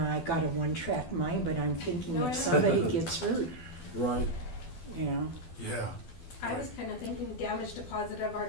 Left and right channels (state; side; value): late; right; 12 ms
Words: got a one-track mind, but I'm thinking No, I if know. somebody gets hurt, Right, Yeah. I was kind of thinking damage deposit of our